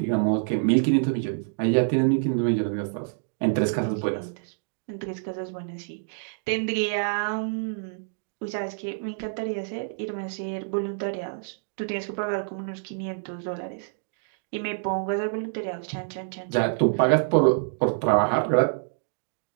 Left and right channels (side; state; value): left; silent; digital silence